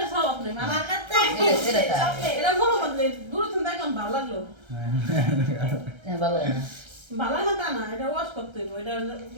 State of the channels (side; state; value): left; late; 1.3 ms